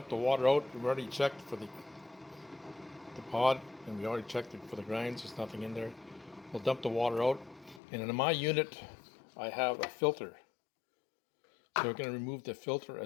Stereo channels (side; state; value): right; drops out; at 7.8 s